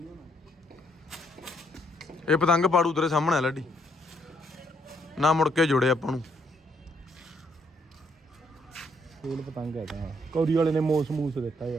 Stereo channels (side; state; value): both; normal; correlation 0.71